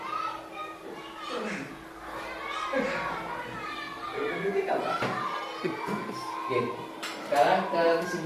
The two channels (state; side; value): identical; both; correlation 1.00